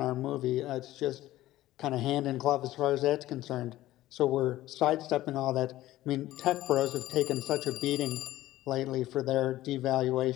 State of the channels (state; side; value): quieter; right; 15.5 dB